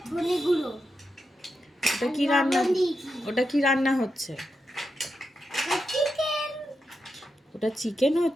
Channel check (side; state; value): both; normal; correlation 0.87